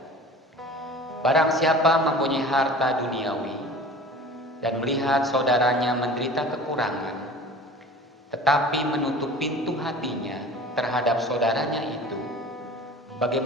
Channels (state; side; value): normal; both; correlation 0.41